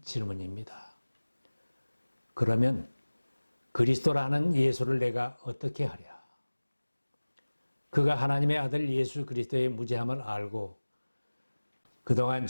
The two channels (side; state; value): both; inverted; correlation -1.00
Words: 질문입니다. 그러면 그리스도라는 예수를 내가 어떻게 하랴? 그가 하나님의 아들 예수 그리스도의 무죄함을 알고 그동안